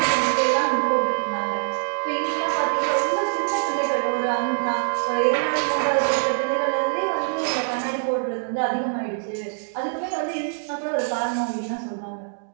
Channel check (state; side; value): silent; left; digital silence